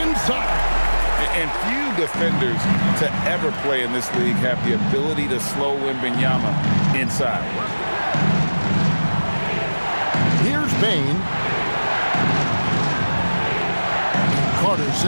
inside. And few defenders to ever play in this league have the ability to slow Wembanyama inside. Here's Bane. Carter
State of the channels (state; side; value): inverted; both; correlation -1.00